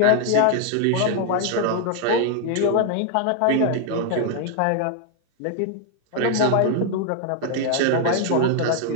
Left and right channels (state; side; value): different; both; correlation 0.00